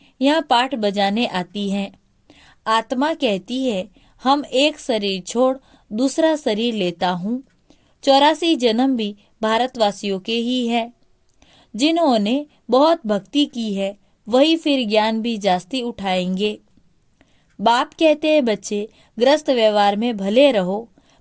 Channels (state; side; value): identical; both; correlation 1.00